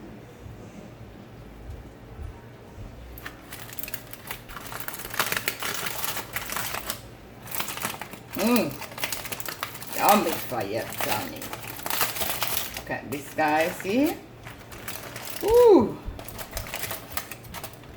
Yummy fire, Johnny. Look at this, guys, see? Ooh,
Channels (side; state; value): both; identical; correlation 1.00